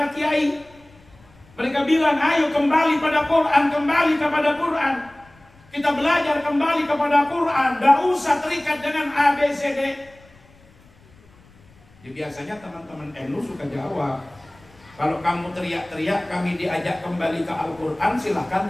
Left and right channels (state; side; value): noise; left; rumble, 28 dB below the sound